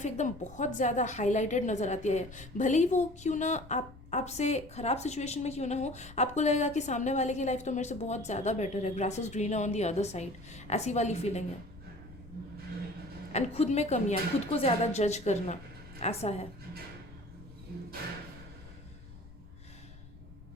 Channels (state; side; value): noise; left; rumble, 18 dB below the sound